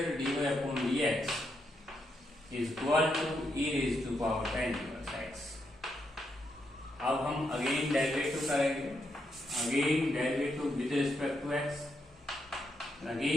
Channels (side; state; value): both; normal; correlation 0.81